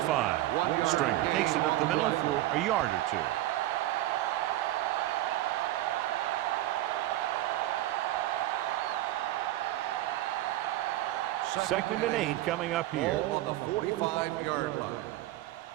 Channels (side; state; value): left; quieter; 15.4 dB